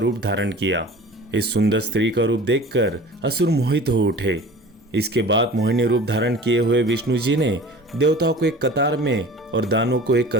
धारण किया। इस सुंदर स्त्री का रूप देखकर असुर मोहित हो उठे। इसके बाद मोहिनी रूप धारण किए हुए विष्णु जी ने देवताओं को एक कतार में और दानवों को एक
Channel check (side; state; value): both; normal; correlation 0.42